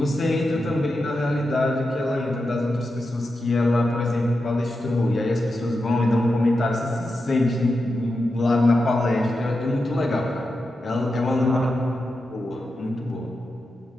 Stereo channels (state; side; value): normal; both; correlation 0.89